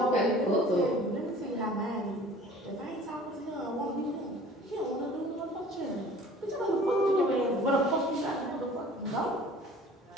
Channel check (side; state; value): both; normal; correlation 0.47